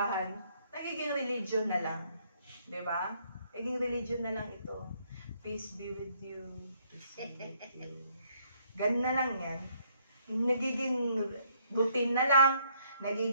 nagiging religion na lang. Di ba? Naging religion na lang ito. Peace be with you. Peace be with you. Ganun na lang yan. Nagiging routine na lang.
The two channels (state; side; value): inverted; both; correlation -0.68